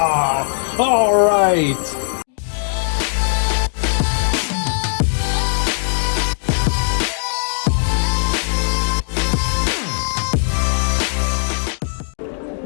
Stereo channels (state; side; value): silent; right; digital silence